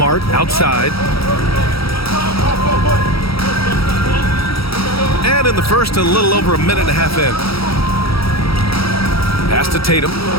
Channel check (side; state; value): right; late; 0.76 ms